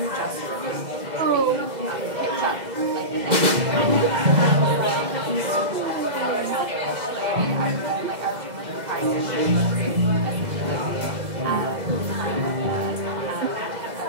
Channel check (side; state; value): left; late; 2.0 ms